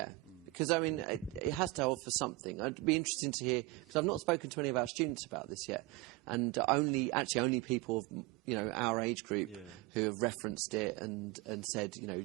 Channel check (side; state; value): left; quieter; 21.0 dB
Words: because I mean, it has to offer something. I'd be interested to hear, because I've not spoken to any of our students about this yet, and only people of our age group who have referenced it and said